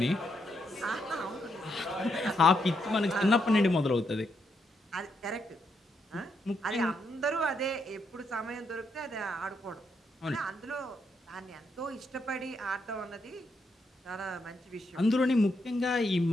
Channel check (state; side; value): normal; both; correlation 0.79